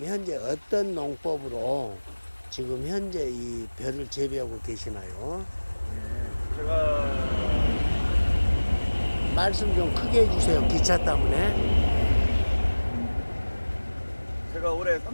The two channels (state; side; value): inverted; both; correlation -1.00